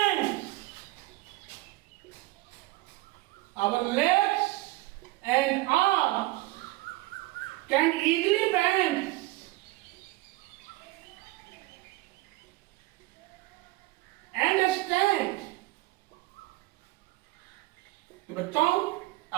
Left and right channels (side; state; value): left; quieter; 19.2 dB